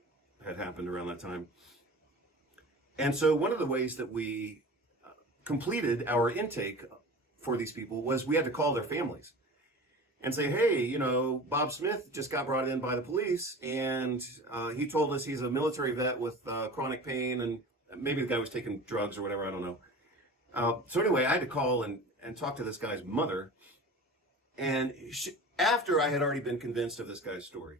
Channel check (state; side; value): normal; both; correlation 0.36